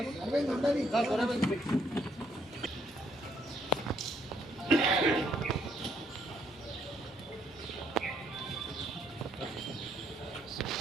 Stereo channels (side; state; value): left; noise; rumble, 27 dB below the sound